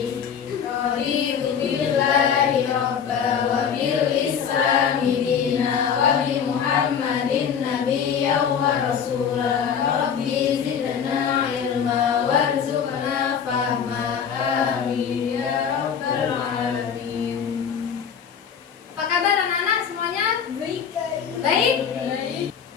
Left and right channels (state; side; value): quieter; right; 7.5 dB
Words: Raditu billahi robba wa bil islami dina wa bi Muhammadin nabiyyan wa rasula. Rabbi zidna ilma warzuqna fahma. Amin ya rabbal alamin. Apa kabar anak-anak semuanya? Baik. Baik?